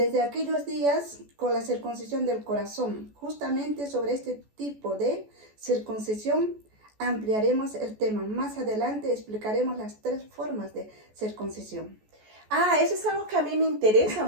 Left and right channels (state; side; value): late; left; 14 ms